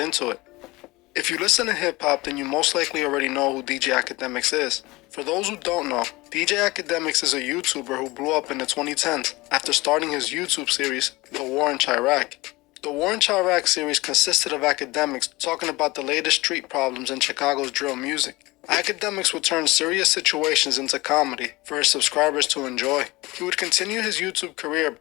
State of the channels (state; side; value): quieter; right; 21.7 dB